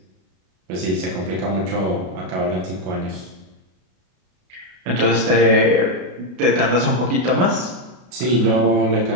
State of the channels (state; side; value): late; left; 33 ms